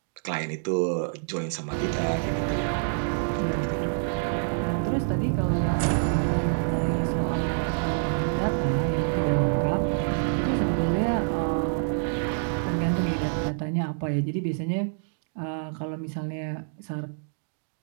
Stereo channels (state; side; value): silent; left; digital silence